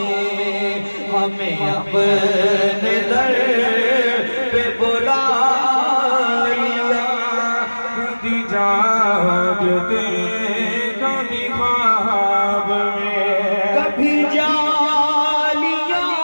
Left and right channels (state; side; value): inverted; both; correlation -1.00